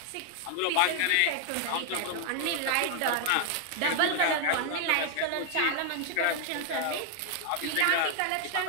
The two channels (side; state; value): both; different; correlation 0.00